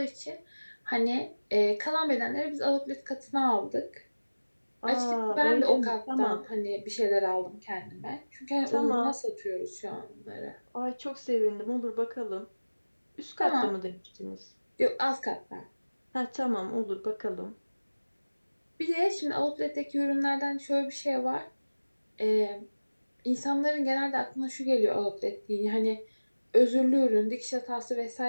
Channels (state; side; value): inverted; both; correlation -1.00